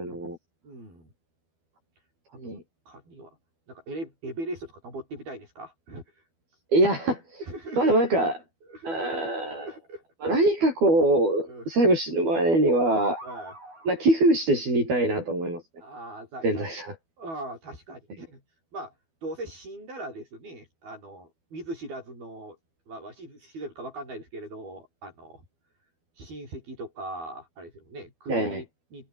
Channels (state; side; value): late; left; 12 ms